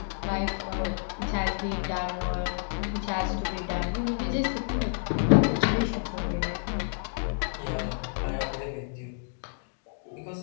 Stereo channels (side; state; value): right; silent; digital silence